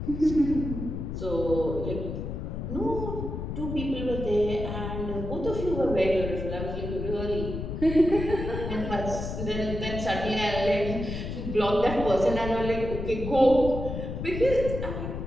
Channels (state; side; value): noise; left; rumble, 5 dB below the sound